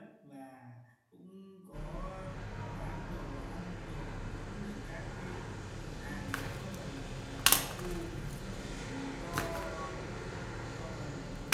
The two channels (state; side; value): identical; both; correlation 1.00